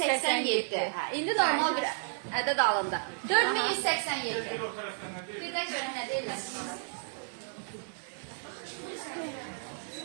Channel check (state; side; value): silent; left; digital silence